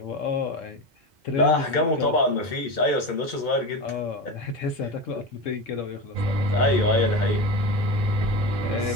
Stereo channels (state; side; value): normal; both; correlation 0.23